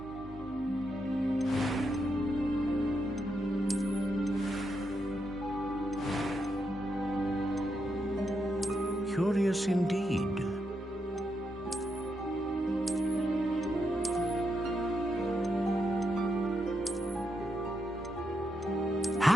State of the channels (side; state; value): both; normal; correlation 0.82